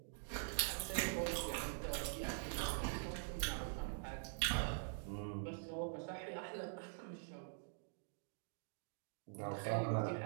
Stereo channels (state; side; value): silent; left; digital silence